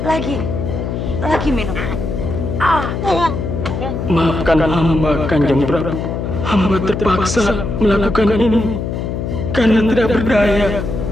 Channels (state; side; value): noise; left; hum, 4 dB below the sound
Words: Lagi minum. Maafkan hamba, Kanjeng Prabu. Hamba terpaksa melakukan ini karena tidak berdaya.